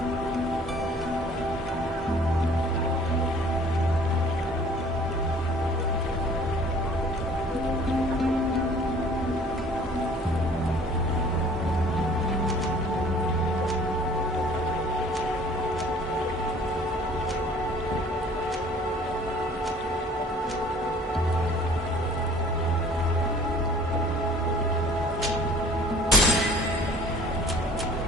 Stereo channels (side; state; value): both; normal; correlation 0.52